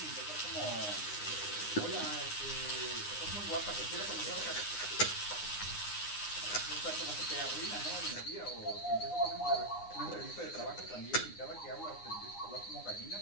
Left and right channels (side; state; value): right; late; 9.7 ms